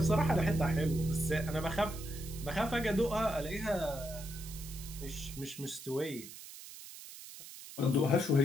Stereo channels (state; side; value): noise; right; hiss, 14 dB below the sound